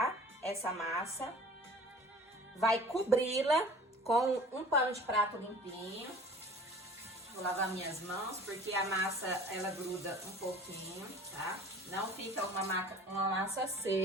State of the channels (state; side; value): normal; both; correlation 0.45